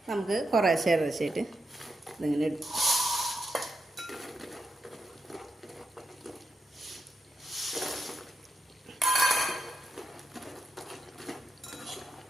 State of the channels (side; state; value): both; normal; correlation 0.86